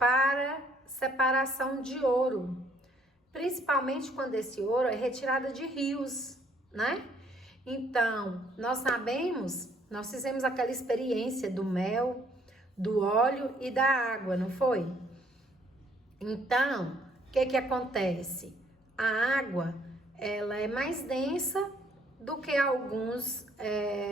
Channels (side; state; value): both; normal; correlation 0.65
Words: separação de ouro, principalmente quando esse ouro é retirado de rios, né? Então, nós fizemos aquela experiência do mel, do óleo e da água, não foi? Então, o que acontece? A água, ela é mais densa do que alguns